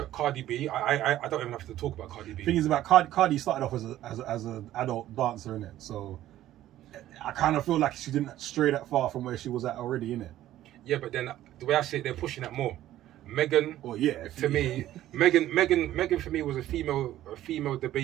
Cardi B. I don't even have to talk about Cardi B. Thing is about Cardi started off as an adult dancer in it, so I kind of feel like she didn't stray that far from where she was at already in it. Yeah, but then the way I see it, they're pushing that more. Megan, Oh yeah, to me, Megan for me was a female the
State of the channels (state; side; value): quieter; left; 13.6 dB